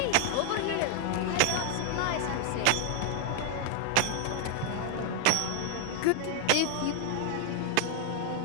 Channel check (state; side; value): different; both; correlation 0.00